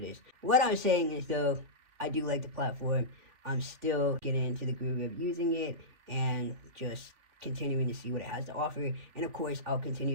is. What I'm saying is, though, I do like the platform. I'm still getting into the groove of using it and just continuing to see what it has to offer. And of course, I'll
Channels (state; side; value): late; left; 3.4 ms